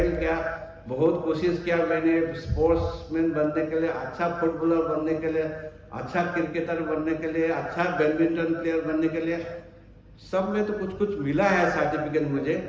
किया, बहुत कोशिश किया मैंने स्पोर्ट्समैन बनने के लिए, अच्छा फुटबॉलर बनने के लिए, अच्छा क्रिकेटर बनने के लिए, अच्छा बैडमिंटन प्लेयर बनने के लिए। सब में तो कुछ कुछ मिला है सर्टिफिकेट मुझे,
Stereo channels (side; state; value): both; identical; correlation 1.00